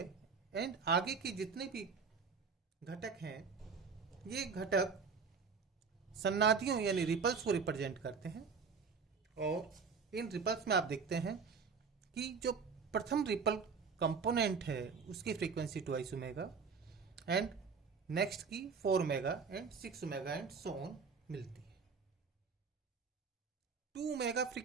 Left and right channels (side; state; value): left; quieter; 5.4 dB